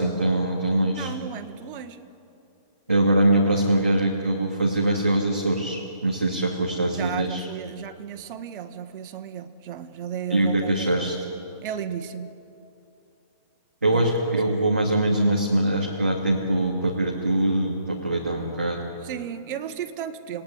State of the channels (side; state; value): both; inverted; correlation -0.73